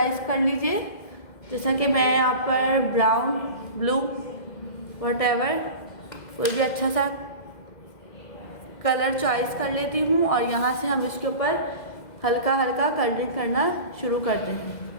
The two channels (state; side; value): late; right; 2.0 ms